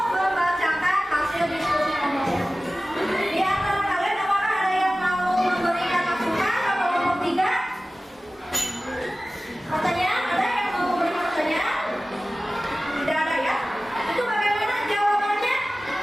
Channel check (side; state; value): both; normal; correlation 0.97